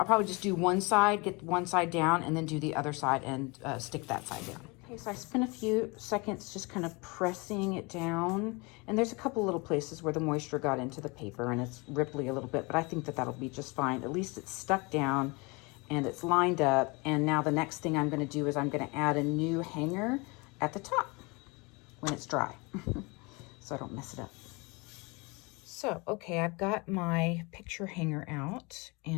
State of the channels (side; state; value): right; quieter; 27.6 dB